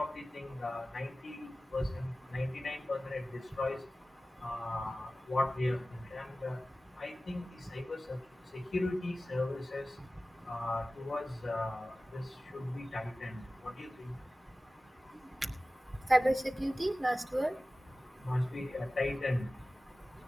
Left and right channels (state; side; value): normal; both; correlation 0.96